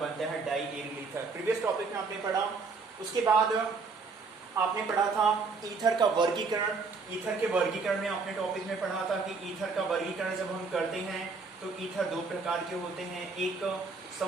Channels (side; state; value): left; quieter; 4.5 dB